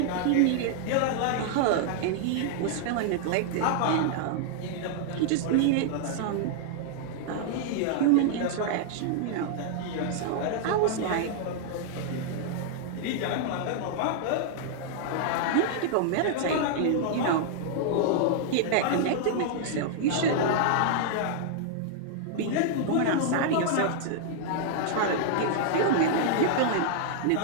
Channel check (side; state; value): both; different; correlation -0.01